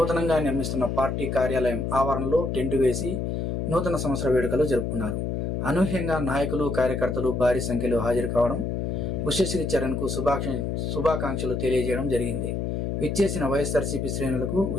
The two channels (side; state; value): left; noise; hum, 1 dB below the sound